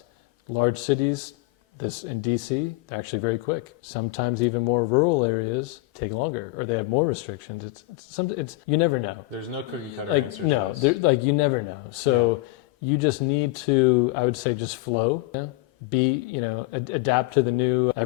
Large cities, this in DC, they're actually very quick. Sometimes even more rural areas take longer, or they have more restrictions. It's you never know. There's no cookie cutter answer to this. You never know. So you just need to, I would say, just flow. Adapt to the new.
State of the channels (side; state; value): right; quieter; 20.2 dB